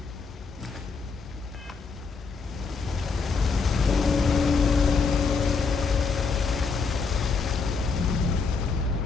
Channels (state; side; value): quieter; right; 4.9 dB